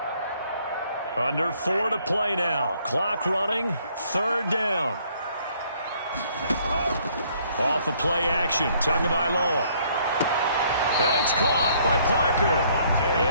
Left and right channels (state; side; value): inverted; both; correlation -0.64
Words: Under 4 to play now. Clock running. 3rd down. Off of play action. Tagovailoa. And it's caught by Parker.